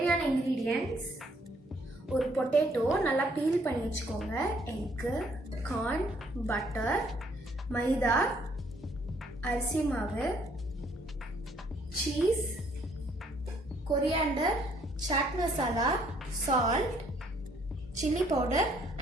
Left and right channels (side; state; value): both; normal; correlation 0.65